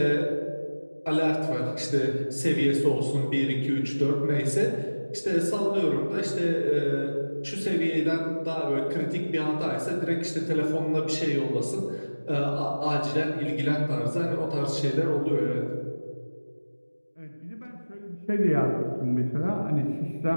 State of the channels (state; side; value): inverted; both; correlation -1.00